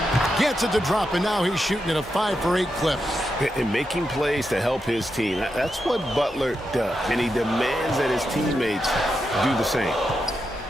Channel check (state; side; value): normal; both; correlation 0.86